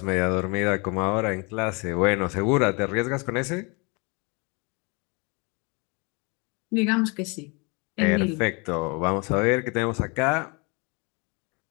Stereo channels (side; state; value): right; quieter; 30.7 dB